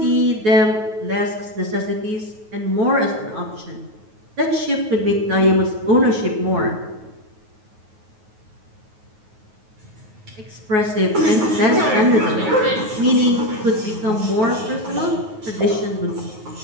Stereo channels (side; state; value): left; late; 9.4 ms